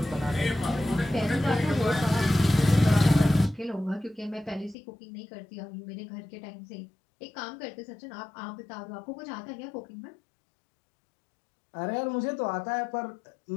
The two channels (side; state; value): right; drops out; at 4.8 s